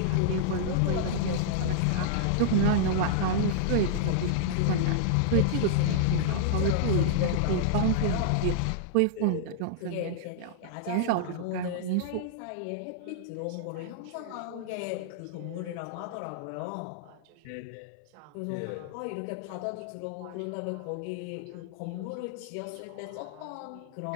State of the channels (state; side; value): different; both; correlation -0.01